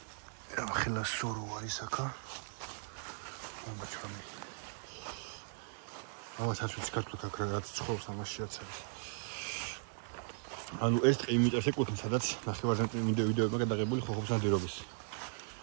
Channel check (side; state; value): left; silent; digital silence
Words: ახლა სორო არის აქა ამაჩრამი ამასაც ვიწყებთ აქ რაღაც ცხოვრობს ამაშიაც არის ანუ ეს ტყე იმ მიწებს ეკუთვნის სადაც ნახევარზე ვიდეოებმა გადაღებული ხოხობს ნადირობის